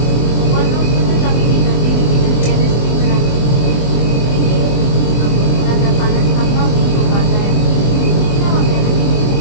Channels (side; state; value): right; late; 24 ms